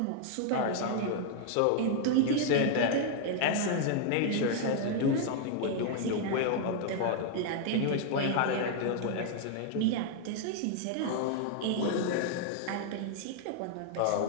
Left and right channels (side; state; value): both; different; correlation 0.00